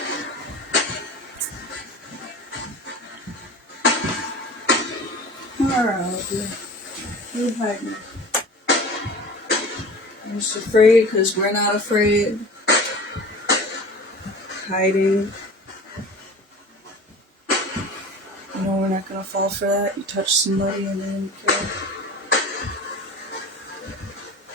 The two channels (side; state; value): both; normal; correlation 0.38